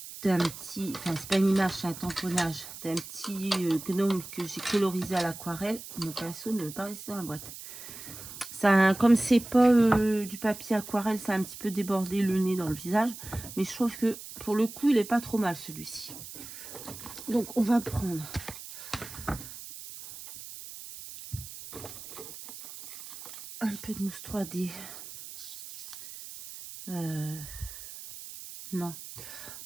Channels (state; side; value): noise; right; hiss, 13 dB below the sound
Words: d'un petit, enfin c'est pas une image, c'est un tamponnage d'un petit gnome que j'ai colorisé à l'aquarelle. Mon pinceau ne veut pas rester dans la boîte. Ça, comme c'est pas du papier aquarelle, ça a un petit peu débordé le nez dans le visage. Mais je trouve que pour le coup, il est pas trop mal celui-ci. Donc on va prendre un peu de mousse 3D. Non,